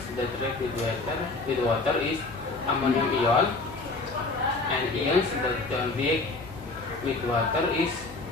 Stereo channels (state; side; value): quieter; right; 3.4 dB